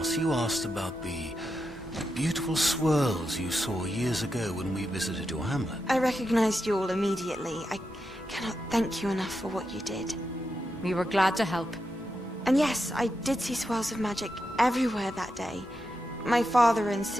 you asked about the beautiful swirls you saw years ago when we visited your hamlet. I recognized you all immediately. I cannot thank you enough for what you did. We were glad to help. And yes, I did see swirls of magic everywhere that day. My father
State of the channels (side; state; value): both; normal; correlation 0.86